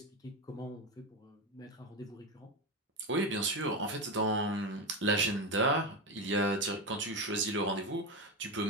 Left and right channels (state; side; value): normal; both; correlation 0.14